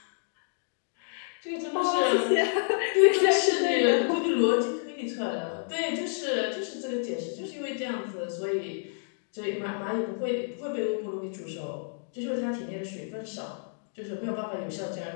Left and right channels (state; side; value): silent; right; digital silence